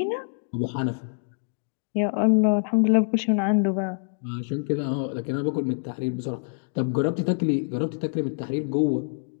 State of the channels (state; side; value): silent; right; digital silence